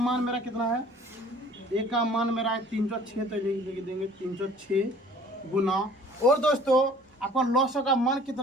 मेरा कितना है, ए का मान मेरा है 306। तो लिख देंगे 306 गुना, और दोस्तों आपका लॉस का मान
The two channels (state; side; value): normal; both; correlation 0.52